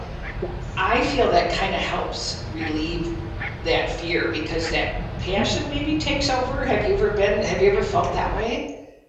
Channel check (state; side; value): identical; both; correlation 1.00